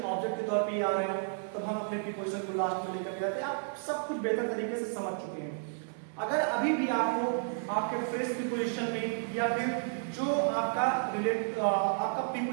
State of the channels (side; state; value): left; silent; digital silence